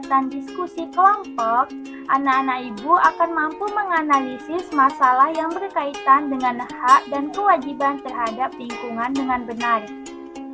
diskusi kelompok, anak-anak Ibu akan mampu menganalisis masalah yang berkaitan dengan hak dan kewajiban terhadap lingkungan dengan benar.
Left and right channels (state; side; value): identical; both; correlation 1.00